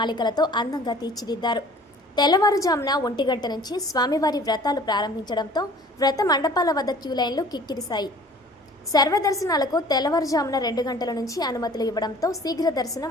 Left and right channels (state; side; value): normal; both; correlation 0.49